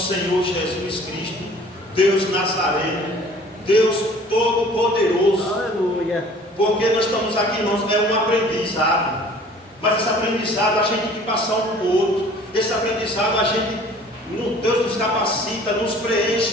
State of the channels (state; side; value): normal; both; correlation 0.50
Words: Senhor Jesus Cristo, Deus Nazareno, Deus Todo-Poderoso. Aleluia. Porque nós estamos aqui, irmãos, é um aprendizado, mas esse aprendizado a gente tem que passar um para o outro. Esse aprendizado a gente, Deus nos capacita, nos